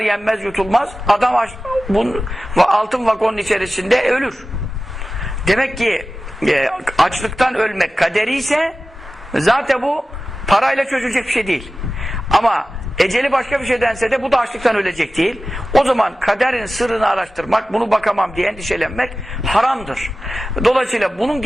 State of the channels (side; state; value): both; normal; correlation 0.95